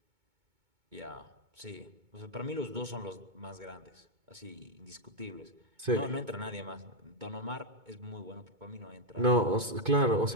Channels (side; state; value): left; late; 2.2 ms